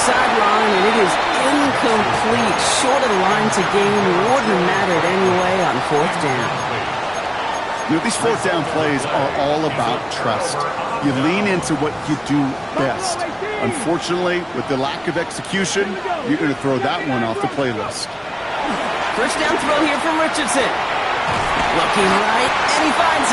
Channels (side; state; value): both; identical; correlation 1.00